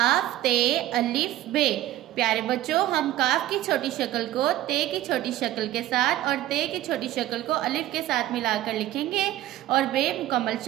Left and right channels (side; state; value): left; quieter; 14.3 dB